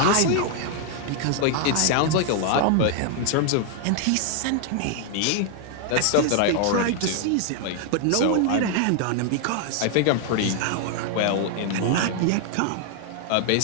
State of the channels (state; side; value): different; both; correlation 0.00